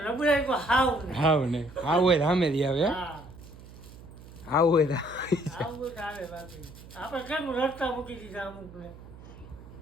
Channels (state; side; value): noise; right; hum, 18 dB below the sound